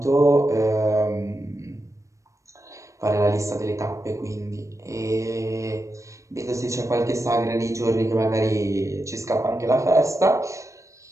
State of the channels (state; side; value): late; left; 0.15 ms